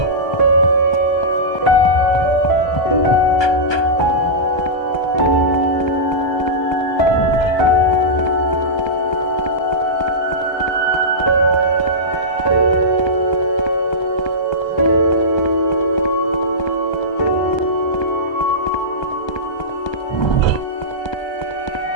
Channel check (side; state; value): right; late; 1.2 ms